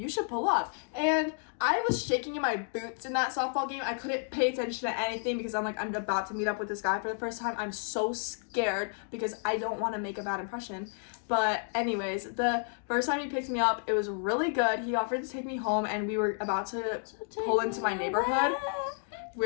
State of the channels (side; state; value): right; silent; 57 dB below the other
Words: should pull up. And I was shaking in my boots in that softball game. I couldn't pay attention to anything because I'm like, I'm about to meet up with this guy for the first time. I'm so scared because I don't want to make a bad impression. But anyways, the first time he picked me up, it was really good. He offered to take me home, and we were about to pull into my neighborhood.